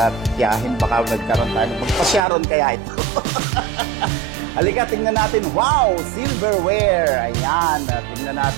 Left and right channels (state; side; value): drops out; left; at 2.2 s